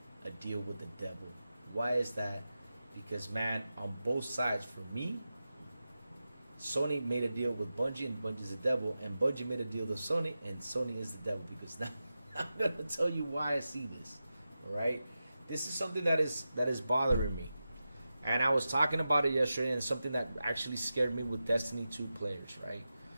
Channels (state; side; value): inverted; both; correlation -0.92